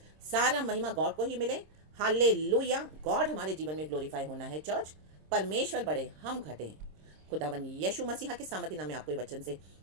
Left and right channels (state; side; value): late; left; 26 ms